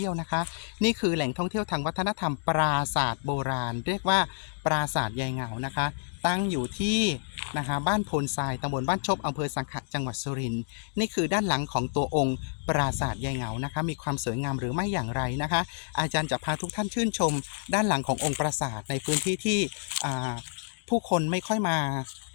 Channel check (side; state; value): right; silent; digital silence